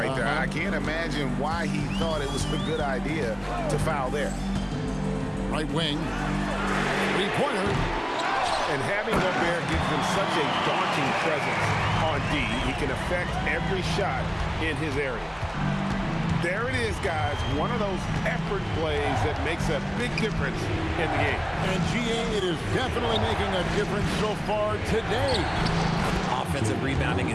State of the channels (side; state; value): both; identical; correlation 1.00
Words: there. I can't imagine why he thought it was a good idea to foul there. Right wing. 3-pointer. And having Gobert gives him such a daunting presence on D, he can affect every shot in his area. There it is, guys. One of those effort plays that makes a big difference in the game. And GA, it is definitely making a difference so far today. Offensive rebounding